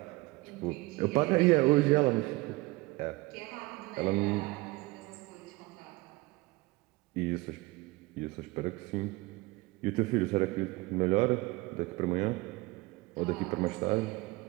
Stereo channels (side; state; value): left; quieter; 22.1 dB